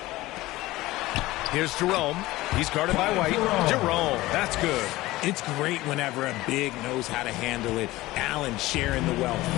Here's Jerome. He's guarded by White. Jerome, that's good. It's great whenever a big knows how to handle it. Allen sharing the wealth.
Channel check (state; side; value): quieter; right; 18.3 dB